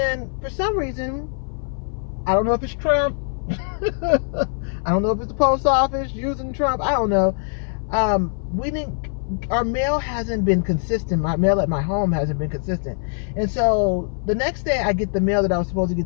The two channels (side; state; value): right; silent; 60 dB below the other